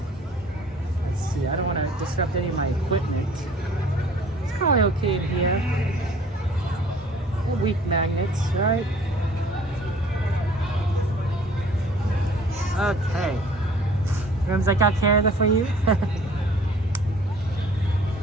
Let's see. I don't want to disrupt any of my equipment. It's probably okay in here. They're weak magnets, right? Okay. Rooms, I got care of that for you.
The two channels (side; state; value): both; normal; correlation 0.52